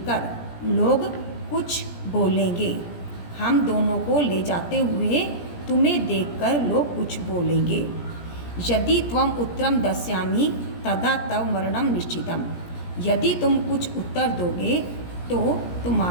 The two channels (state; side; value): late; right; 17 ms